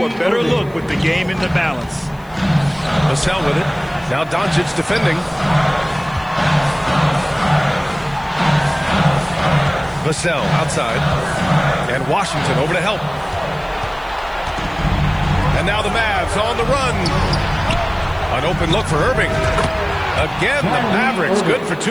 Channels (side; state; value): left; noise; hiss, 29 dB below the sound